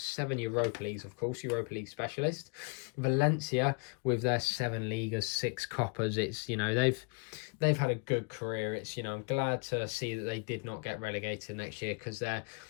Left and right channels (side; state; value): right; quieter; 33.4 dB